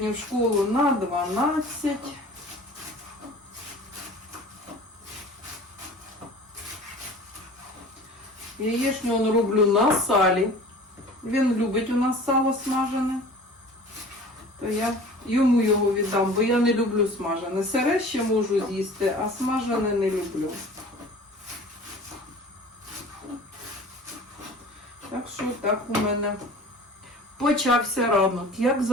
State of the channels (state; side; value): normal; both; correlation 0.43